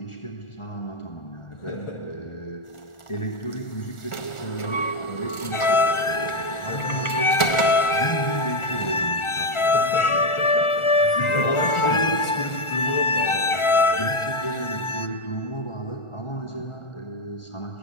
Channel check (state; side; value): late; right; 1.4 ms